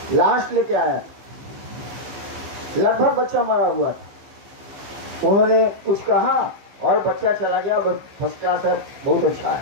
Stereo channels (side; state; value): left; late; 15 ms